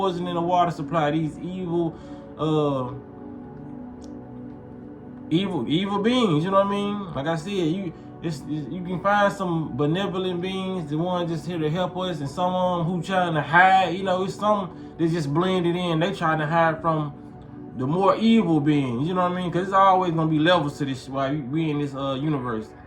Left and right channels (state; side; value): identical; both; correlation 1.00